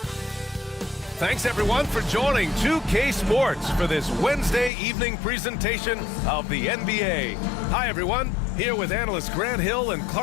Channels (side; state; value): right; drops out; at 4.7 s